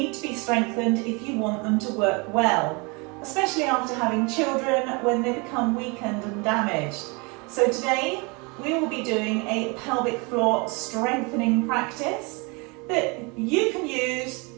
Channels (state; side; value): quieter; left; 29.5 dB